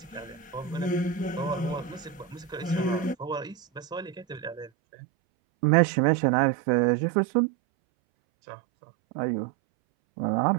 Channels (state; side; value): drops out; left; at 4.7 s